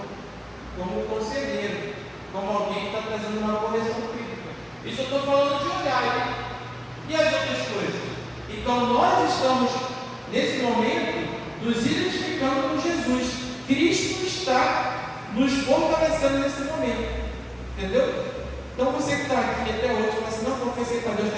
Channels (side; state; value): both; identical; correlation 1.00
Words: como o conselheiro, como alguém que está trazendo uma correção crítica. Isso eu estou falando de olhar, hein? E as outras coisas? Então nós estamos, nesse momento, nos identificando com Jesus. Cristo está nos fortalecendo nesse momento. Entendeu? Então você que está aqui até hoje, fala assim, não confessei para Deus,